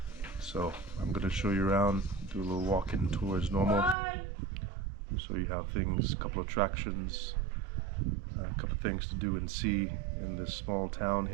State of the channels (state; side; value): drops out; left; at 4.0 s